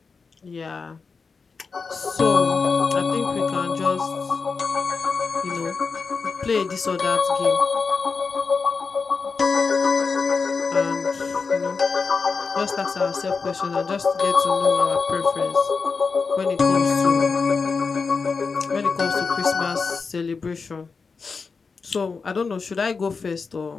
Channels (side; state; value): right; quieter; 4.9 dB